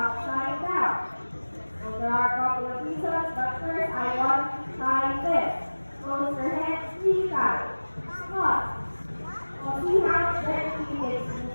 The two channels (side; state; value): both; inverted; correlation -1.00